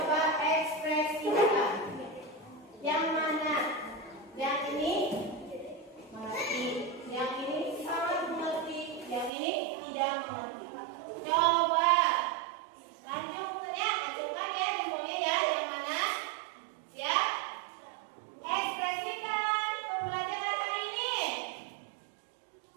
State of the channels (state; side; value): drops out; left; at 9.3 s